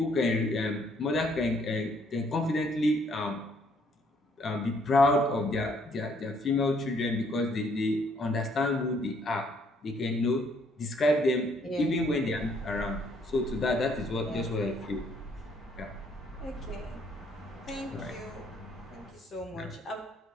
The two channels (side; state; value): both; normal; correlation 0.66